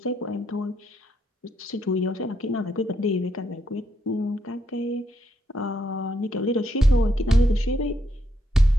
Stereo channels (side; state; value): both; normal; correlation 0.77